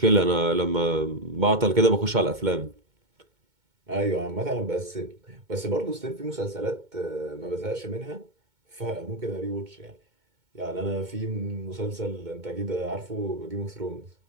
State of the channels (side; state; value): left; late; 2.2 ms